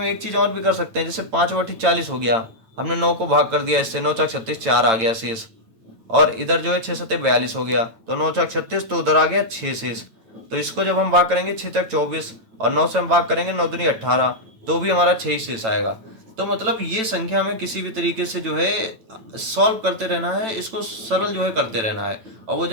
एक चीज़ और भी कर सकते हैं, जैसे 5 बटे 40 हो गया, हमने 9 को भाग कर दिया इससे, 9 4 36, 4 आ गया शेष। और इधर जो है 6 सत्ते 42 हो गया, तो 9 चौक 36, तो उधर आ गया 6 शेष। तो इसको जब हम भाग करेंगे 6 तक 24 और 9 से हम भाग करेंगे 9 दूनी 18, तो भी हमारा 6 ही शेष आएगा। तो मतलब ये संख्या हमें किसी भी तरीके से जो है सॉल्व करते रहना है, इसको सरल जो है करते रहना है, और वो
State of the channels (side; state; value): left; late; 8.9 ms